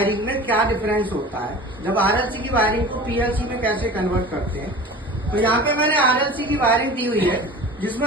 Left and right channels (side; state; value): both; normal; correlation 0.38